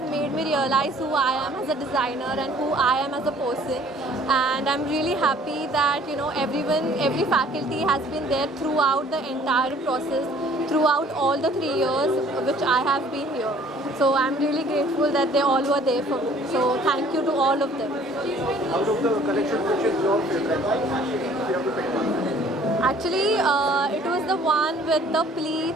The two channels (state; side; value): normal; both; correlation 0.55